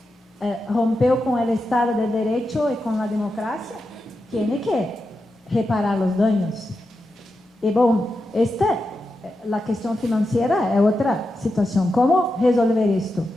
rompeu com o Estado de Direito e com a democracia, tem que reparar os danos. E bom, a questão financeira é outra situação. Como resolver isto?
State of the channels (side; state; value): both; normal; correlation 0.88